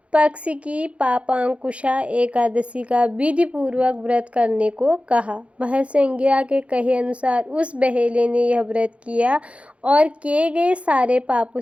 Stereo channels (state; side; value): late; left; 0.062 ms